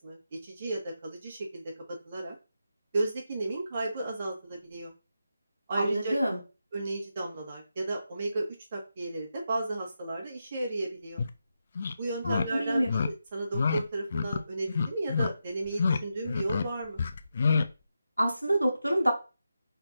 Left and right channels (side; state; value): both; inverted; correlation -0.87